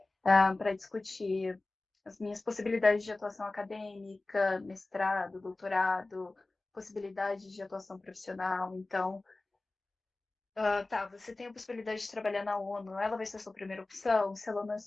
para discutir as minhas possibilidades de atuação acadêmica, mestrado, doutorado, possibilidades de atuação profissional. Então, você tem a possibilidade de trabalhar na ONU, ela vai ser a sua primeira opção? Se ela não é a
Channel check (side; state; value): right; quieter; 3.1 dB